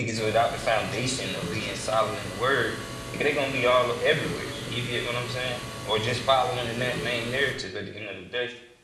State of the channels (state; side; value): identical; both; correlation 1.00